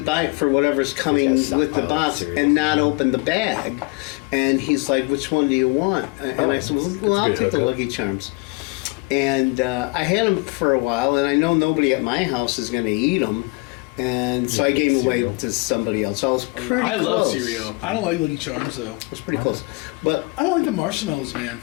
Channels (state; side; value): quieter; right; 27.6 dB